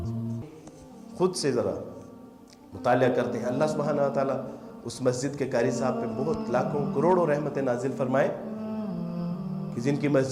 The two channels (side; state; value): both; identical; correlation 1.00